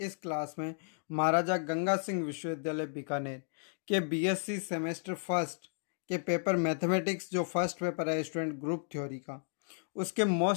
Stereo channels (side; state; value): right; silent; digital silence